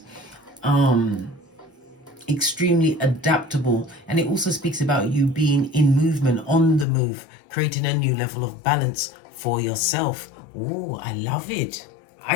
Extremely adaptable, and it also speaks about you being in movement, on the move, creating a new level of balance for yourself. Oh, I love it.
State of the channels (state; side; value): drops out; right; at 6.9 s